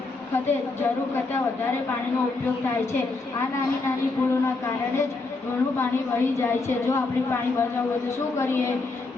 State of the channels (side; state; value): right; quieter; 3.6 dB